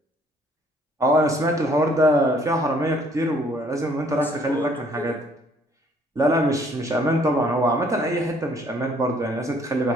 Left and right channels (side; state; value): both; normal; correlation 0.62